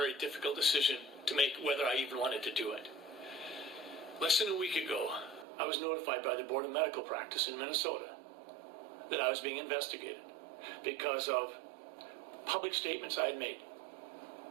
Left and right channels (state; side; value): drops out; left; at 5.5 s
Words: difficult decision to make whether I even wanted to do it. Less than a week ago, I was notified by the Board of Medical Practice in Minnesota that I was being investigated because of public statements I had made.